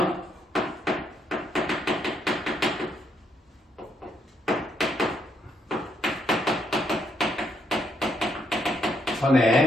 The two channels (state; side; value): normal; both; correlation 0.75